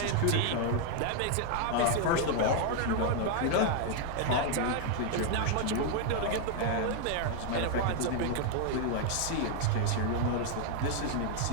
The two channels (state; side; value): different; both; correlation 0.00